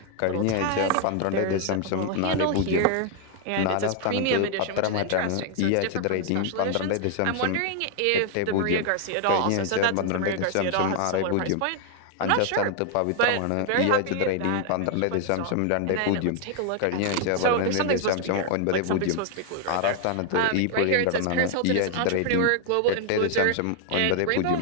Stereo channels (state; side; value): different; both; correlation 0.00